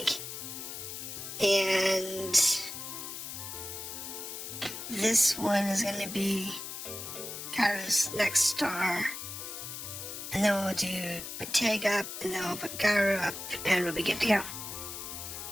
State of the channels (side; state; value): left; noise; hiss, 8 dB below the sound